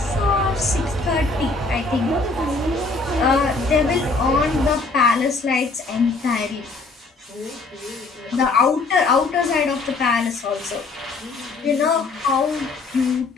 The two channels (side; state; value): right; quieter; 3.7 dB